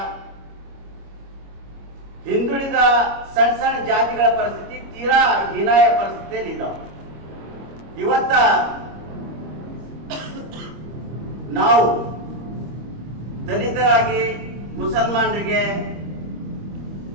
ಹಿಂದುಳಿದ ಸಣ್ಣ ಸಣ್ಣ ಜಾತಿಗಳ ಪರಿಸ್ಥಿತಿ ತೀರಾ ಹೀನಾಯ ಪರಿಸ್ಥಿತಿಯಲ್ಲಿ ಇದ್ದಾವೆ. ಇವತ್ತ ನಾವು ದಲಿತರಾಗಿ ಮುಸಲ್ಮಾನರಿಗೆ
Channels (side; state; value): left; late; 25 ms